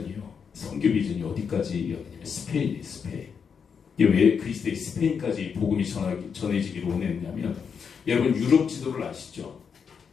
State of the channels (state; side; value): quieter; right; 6.5 dB